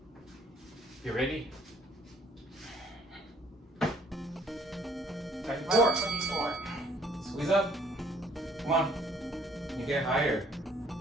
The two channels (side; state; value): both; normal; correlation 0.61